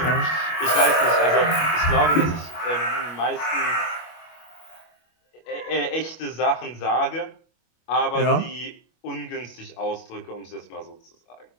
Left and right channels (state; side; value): late; right; 25 ms